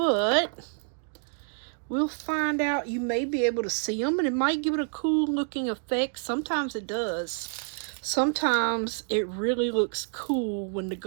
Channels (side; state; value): left; silent; 59 dB below the other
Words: we'll find out. You may be able to see them, and it might give it a cool looking effect. Sometimes it does. Sometimes it really looks cool when the